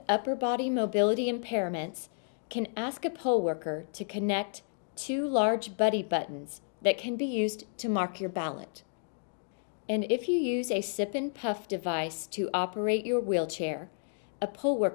upper body mobility impairments can ask a poll worker to connect 2 large buddy buttons that can be used to mark your ballot. And if you use a sip and puff device to operate your wheelchair, a poll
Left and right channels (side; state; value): right; silent; digital silence